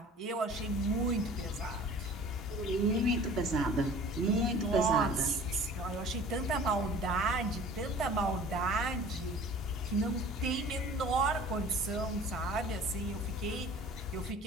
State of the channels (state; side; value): normal; both; correlation 0.45